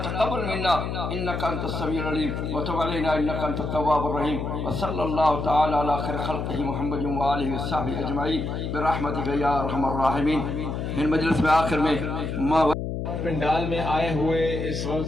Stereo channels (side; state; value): left; noise; hum, 3 dB below the sound